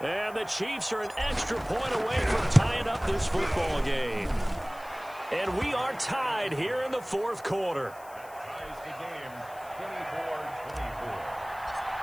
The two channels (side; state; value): left; noise; hiss, 22 dB below the sound